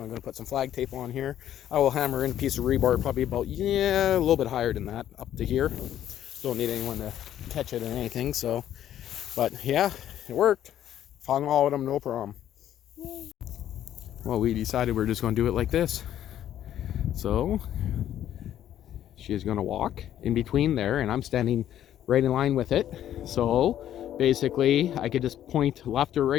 I'm going to put some flag tape on here. I will hammer in a piece of rebar probably about, yeah, a little bit higher than that up to here. Don't need anyone to catch it or anything. So, but yeah, it worked. Found all of them, no problem. Well, we decided we're just going to do it like this. So she is going to walk in between there, and I'm standing right in line with it. So basically, I could just point left or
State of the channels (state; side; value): quieter; right; 11.3 dB